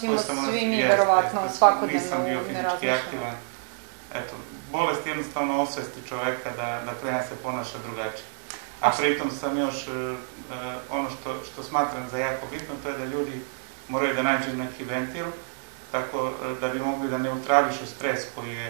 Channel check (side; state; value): left; silent; 59 dB below the other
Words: svi mi, verovatno, svakodnevno. Nisam bio fizički aktivan. Eto, bolest jednostavno osvesti čoveka da krene se ponaša drugačije. A pritom sam još, ono što smatram za jako bitno, to je da ljudi moraju da nađu neki ventil, tako da bi mogli da neutrališu stres